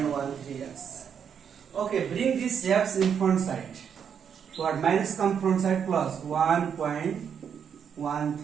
Okay, bring this x in front side. What? Minus come front side plus 1.13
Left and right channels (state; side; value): quieter; left; 7.6 dB